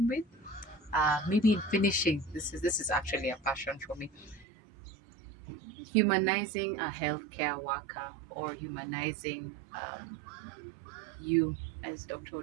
with. Maybe in finishing, this is actually a passion for me. Humanizing a healthcare worker, or humanizing you as Dr.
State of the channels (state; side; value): drops out; left; at 4.5 s